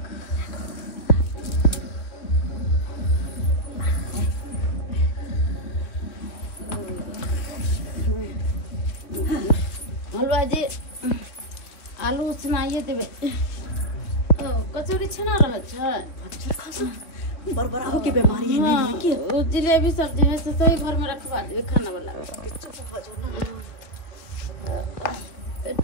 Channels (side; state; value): right; late; 2.9 ms